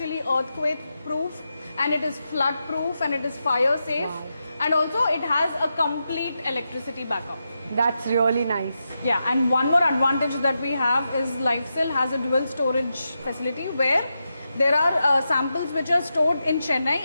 earthquake proof, and it is flood proof, and it is fire safe. Wow. And also it has a complete electricity backup. That's really nice. Yeah, and one more advantage that we have is LifeCell has a dual storage facility where there are samples which are stored in Chennai,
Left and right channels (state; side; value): inverted; both; correlation -0.88